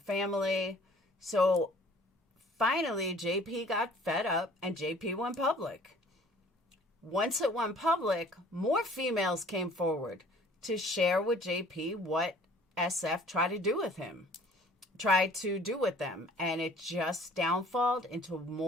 So finally, JP got fed up and JP went public. Once it went public, more females came forward to share with JP what SF tried to do with them. And it just downfalled into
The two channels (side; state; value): both; normal; correlation 0.52